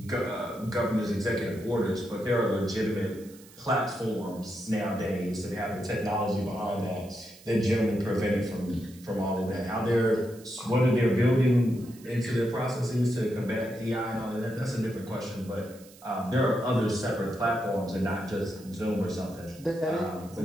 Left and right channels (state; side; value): noise; right; hiss, 23 dB below the sound